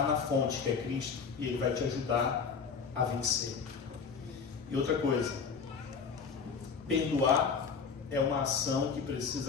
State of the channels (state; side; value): quieter; right; 5.8 dB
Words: na fonte que é Cristo, e Ele vai te ajudar a vencer. E outra coisa, perdoar é uma ação que